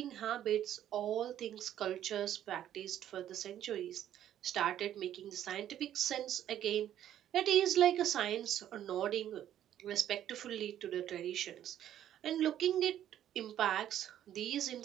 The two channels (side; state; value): left; quieter; 11.2 dB